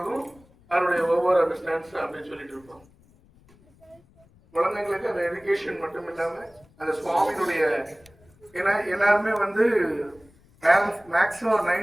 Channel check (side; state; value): left; noise; rumble, 29 dB below the sound